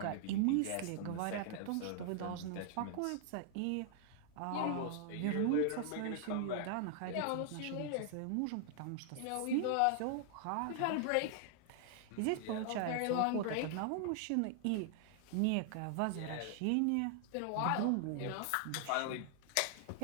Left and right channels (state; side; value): different; both; correlation 0.00